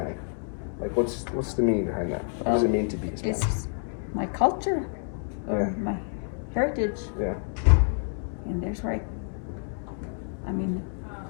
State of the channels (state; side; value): silent; right; 59 dB below the other